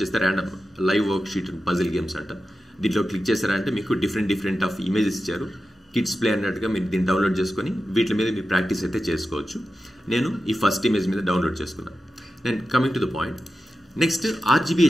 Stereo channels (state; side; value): normal; both; correlation 0.92